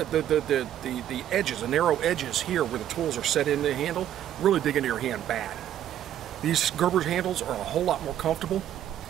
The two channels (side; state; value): left; quieter; 11.2 dB